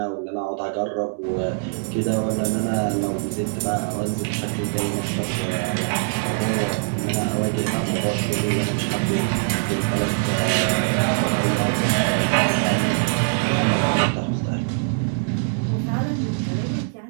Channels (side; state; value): left; silent; digital silence